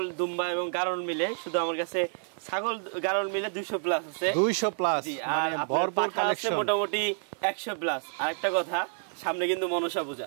দুম্বা এবং গারল মিলে শুধু আমার কাছে ছাগল গারল মিলে 200 প্লাস আছে। 200 প্লাস, মানে ভরপুর কালেকশন, মোটামুটি 100 প্লাস। আরেকটা কথা, সামনে কিন্তু মনসা পূজা,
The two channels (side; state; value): left; silent; digital silence